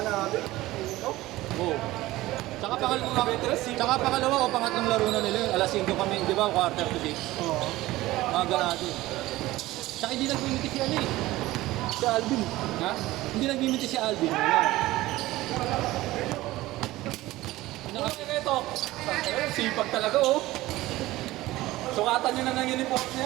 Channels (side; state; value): left; quieter; 17.6 dB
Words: natin. Oo. Tsaka pangalawa o pangatlong laro na nila yun. Alas 5 kami, di ba? Quarter to 6. Oo. Mga ganado. Tsaka hindi nagmimiti si ano eh. Si Alvin. Ha? Hindi nagmimiti si Alvin. Ano kasi ito? Sipag talaga oh. Sukatan nyo na ng uniform na